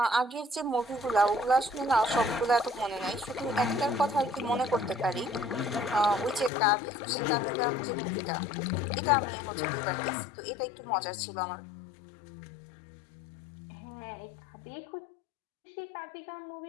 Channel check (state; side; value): drops out; right; at 6.5 s